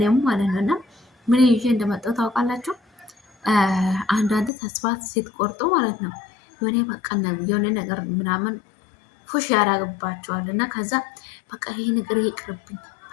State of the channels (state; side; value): drops out; right; at 4.5 s